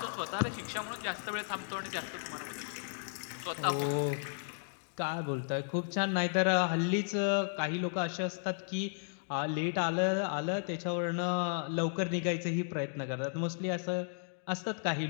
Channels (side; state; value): right; silent; digital silence